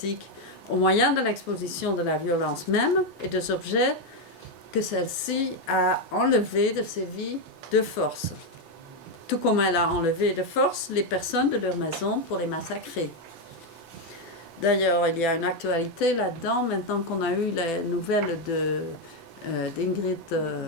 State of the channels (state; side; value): normal; both; correlation 0.04